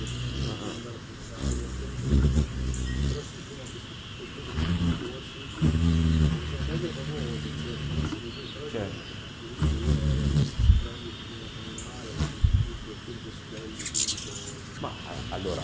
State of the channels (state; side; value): identical; both; correlation 1.00